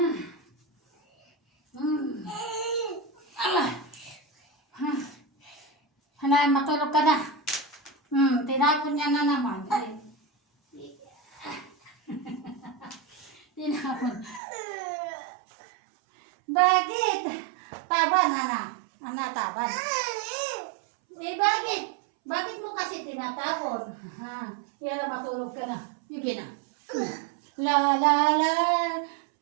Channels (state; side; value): drops out; left; at 14.4 s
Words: Hanay, matulog ka na. Tinapon niya na naman. Tinapon. Bakit? Taban, taban. Bakit? Bakit mo kasi tinatapon? Yan na, matulog ka na. Sige na. La la la.